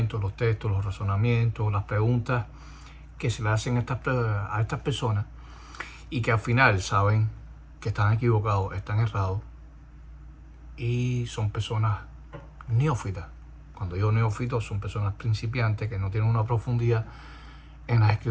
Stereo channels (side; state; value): both; identical; correlation 1.00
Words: los textos, los razonamientos, las preguntas que se le hacen a estas personas y que al final saben que están equivocados, están errados y son personas neófitas. Cuando digo neófitos, son personas principiantes que no tienen una profundidad en las